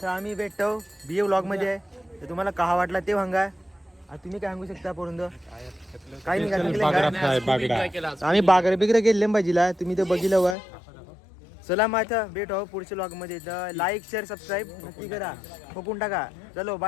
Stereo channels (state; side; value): drops out; right; at 10.6 s